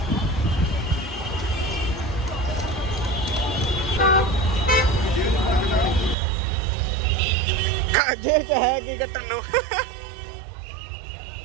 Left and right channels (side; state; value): left; drops out; at 6.2 s